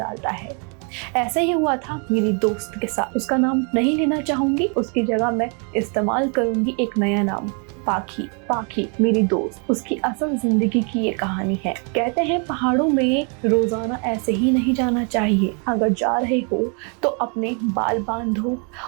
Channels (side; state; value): left; quieter; 37.4 dB